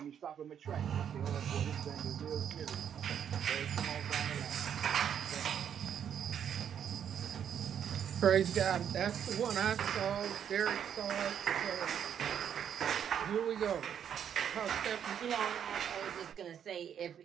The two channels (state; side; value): quieter; left; 8.7 dB